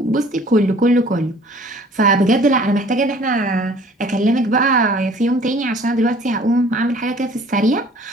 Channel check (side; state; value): both; normal; correlation 0.52